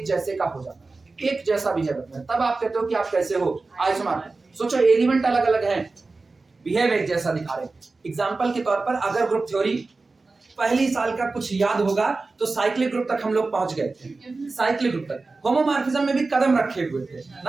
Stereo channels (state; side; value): quieter; left; 3.7 dB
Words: जैसे का हो जाता है, एक जैसा बिहेवियर, तब आप कहते हो कि आप कैसे हो आइसोमॉर्फिक। सोचो एलिमेंट अलग अलग हैं, बिहेव एक जैसा दिखा रहे। एग्जांपल के तौर पर अगर ग्रुप थ्योरी पहली साल का कुछ याद होगा तो साइक्लिक ग्रुप तक हम लोग पहुंच गए थे, साइक्लिक ग्रुप तक। होमोमॉर्फिज्म में भी कदम रखे हुए थे